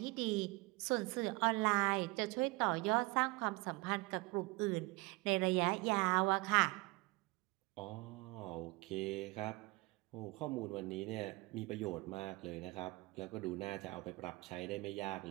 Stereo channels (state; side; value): quieter; left; 24.1 dB